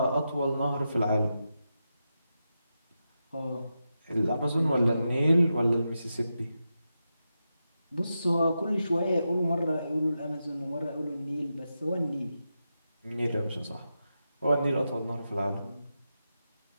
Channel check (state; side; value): inverted; both; correlation -0.88